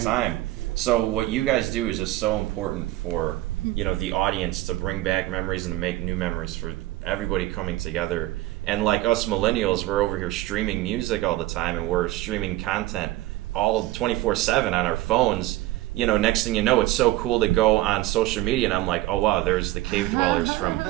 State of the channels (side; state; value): left; quieter; 17.0 dB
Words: Right. time. So what you guys do is just so important for, you know, the audience to bring back memories and to make new memories for everybody coming together. And like us millennials, we're over here streaming music all the time, and we're streaming content all 24/7 on our phones. You know, next thing you know, it's so cool to go on social media, and I'm like, oh wow, there's the Cave Dwellers from